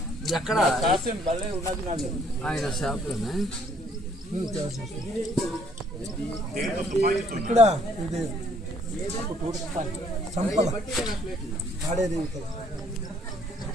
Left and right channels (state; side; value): normal; both; correlation 0.64